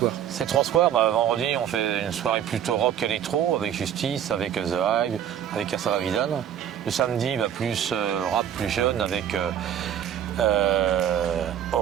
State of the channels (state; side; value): quieter; left; 9.7 dB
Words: Ces 3 soirs, vendredi on fait une soirée plutôt rock électro avec Justice, avec The Hive, avec Asava Vidal. Le samedi, plus rap plus jeune avec